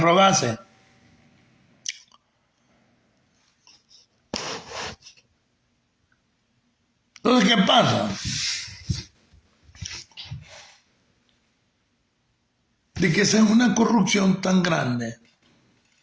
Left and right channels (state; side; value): identical; both; correlation 1.00